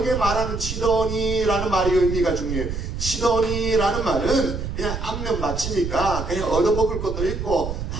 말하는 치더니라는 말의 의미가 중요해요. 치더니라는 말은 그냥 안면 맞추니까 그냥 얻어먹을 것도 있고,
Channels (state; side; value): noise; right; rumble, 5 dB below the sound